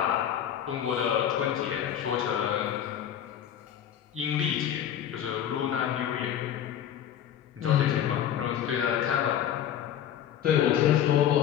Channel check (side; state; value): right; quieter; 10.1 dB